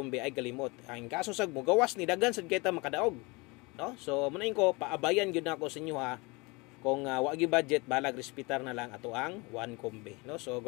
ay kalimot. Ang kaso sag mo gawas ni daghan sad kita makadaog. No? So munain ko paabayan gyud nako sa inyo ha. Kung wa gyud budget, balag respetar na lang ato ang 1 kombe, no? So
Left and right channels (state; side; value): quieter; right; 26.4 dB